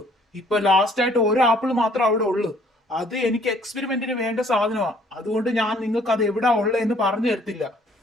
ഇപ്പൊ ലാസ്റ്റ് ആയിട്ട് ഒരു ആപ്പിൾ മാത്രം അവിടെ ഉള്ളു. അത് എനിക്ക് എക്സ്പെരിമെന്റിന് വേണ്ട സാധനമാ. അതുകൊണ്ട് ഞാൻ നിങ്ങൾക്ക് അത് എവിടാ ഉള്ളതെന്ന് പറഞ്ഞു തരത്തില്ല.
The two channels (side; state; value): both; normal; correlation 0.60